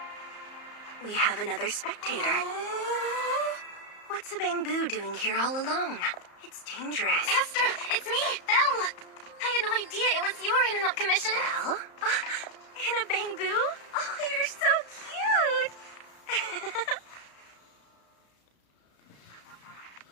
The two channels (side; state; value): right; late; 34 ms